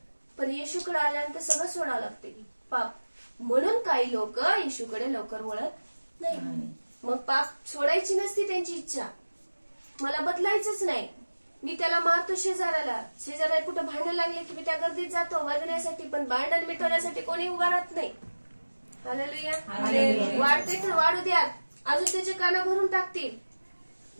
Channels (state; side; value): inverted; both; correlation -1.00